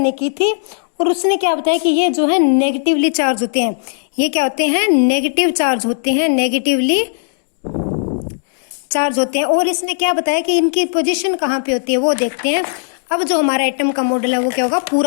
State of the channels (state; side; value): silent; right; digital silence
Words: की थी। और उसने क्या बताया कि ये जो है नेगेटिवली चार्ज होते हैं। ये क्या होते हैं? नेगेटिव चार्ज होते हैं, नेगेटिवली चार्ज होते हैं। और इसने क्या बताया कि इनकी पोजीशन कहाँ पे होती है वो देखते हैं। अब जो हमारा एटम का मॉडल है वो क्या होगा?